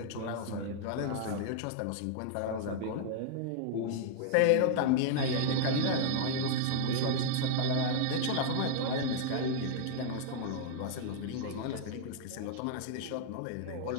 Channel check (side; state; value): both; different; correlation -0.01